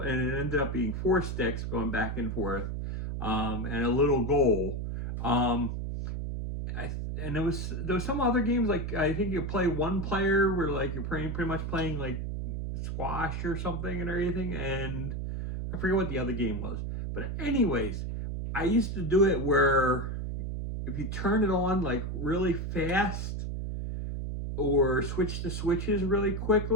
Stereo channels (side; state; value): right; noise; hum, 3 dB below the sound